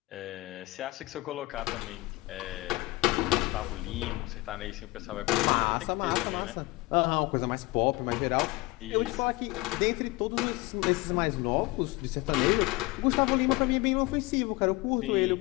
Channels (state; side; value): quieter; right; 21.9 dB